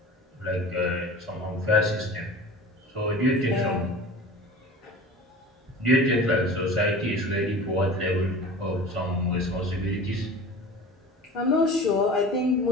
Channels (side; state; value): both; normal; correlation 0.38